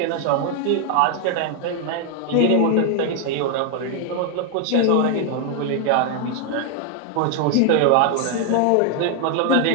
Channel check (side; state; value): both; different; correlation 0.01